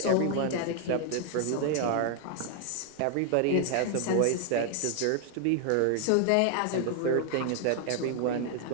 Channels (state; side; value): different; both; correlation 0.00